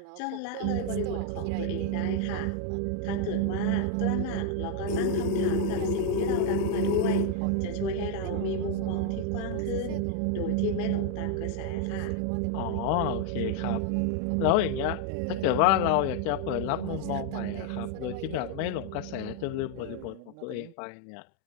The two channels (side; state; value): both; different; correlation 0.00